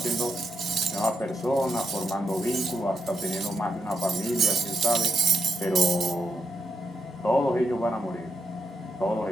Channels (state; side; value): normal; both; correlation 0.83